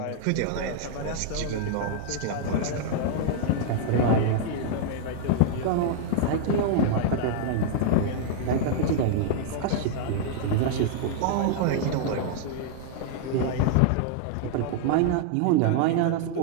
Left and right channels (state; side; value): different; both; correlation -0.01